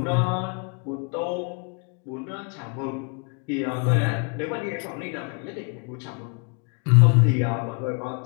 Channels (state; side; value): quieter; right; 37.1 dB